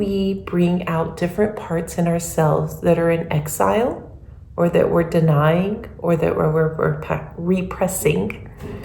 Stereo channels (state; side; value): identical; both; correlation 1.00